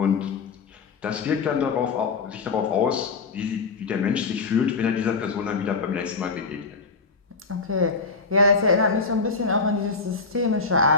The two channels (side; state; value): right; quieter; 4.4 dB